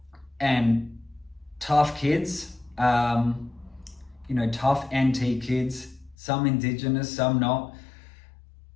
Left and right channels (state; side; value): drops out; right; at 6.2 s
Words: and tough kids, tough NT kids, some Indigenous, some not.